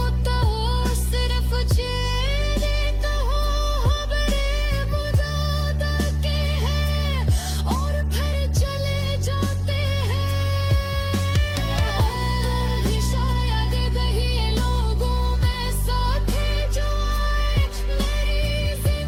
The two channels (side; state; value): both; identical; correlation 1.00